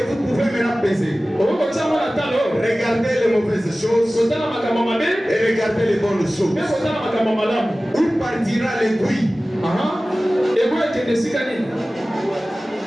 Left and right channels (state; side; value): normal; both; correlation 0.97